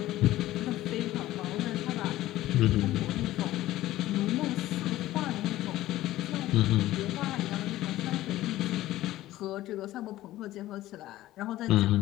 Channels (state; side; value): quieter; right; 15.5 dB